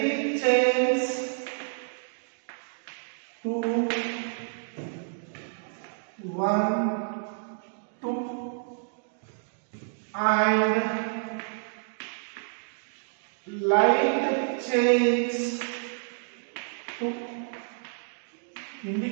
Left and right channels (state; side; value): silent; left; digital silence